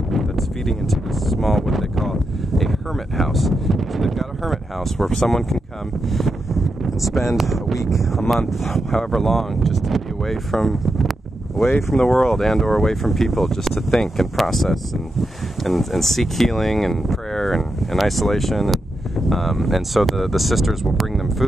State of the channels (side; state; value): both; normal; correlation 0.86